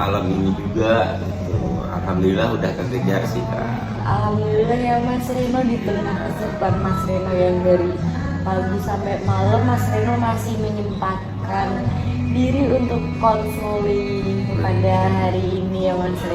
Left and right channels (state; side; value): identical; both; correlation 1.00